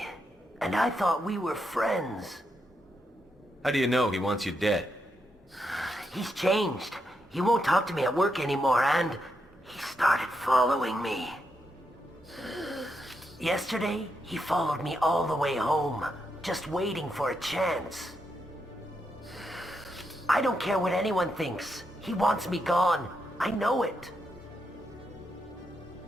and I thought we were friends. How do you know he wants you dead? He's changed. He won't talk to me at work anymore, and he started following me. Yesterday, he followed me all the way home, just waiting for a chance. I don't care what anyone thinks. He wants me gone. I know it.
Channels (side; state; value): both; normal; correlation 0.82